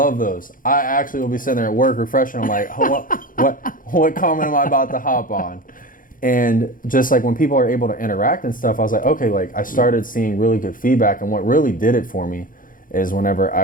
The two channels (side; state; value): right; late; 0.40 ms